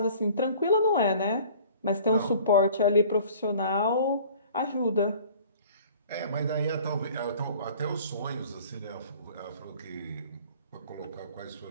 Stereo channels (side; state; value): both; inverted; correlation -0.48